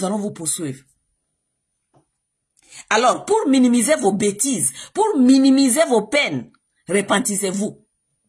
allons vous poursuivre. Alors, pour minimiser vos bêtises, pour minimiser vos peines, repentissez-vous.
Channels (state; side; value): identical; both; correlation 1.00